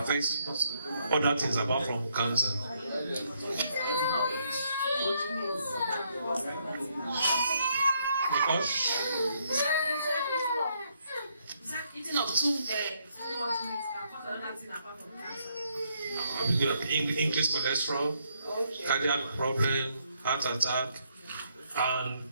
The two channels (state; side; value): inverted; both; correlation -0.73